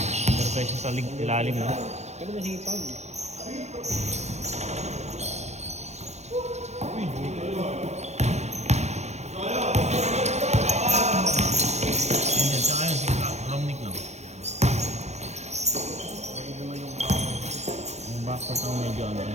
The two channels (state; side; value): late; left; 0.32 ms